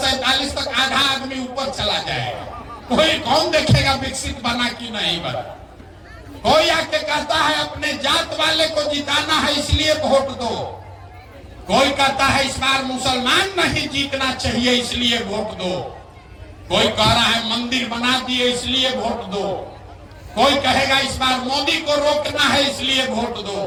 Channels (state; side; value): identical; both; correlation 1.00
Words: तक आधा आदमी ऊपर चला जाएगा, कोई कौन देखेगा विकसित बना कि नहीं बना। कोई आके कहता है अपने जात वाले को जिताना है इसलिए वोट दो, कोई कहता है इस बार मुसलमान नहीं जीतना चाहिए इसलिए वोट दो, कोई कह रहा है मंदिर बना दिए इसलिए वोट दो, कोई कहेगा इस बार मोदी को रोकना है इसलिए वोट दो।